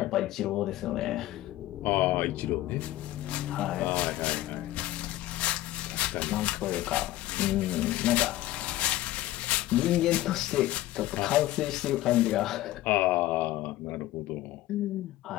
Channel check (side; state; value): right; quieter; 15.7 dB